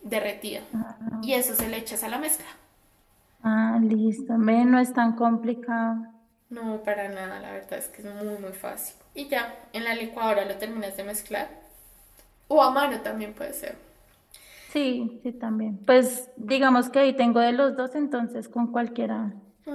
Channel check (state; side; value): identical; both; correlation 1.00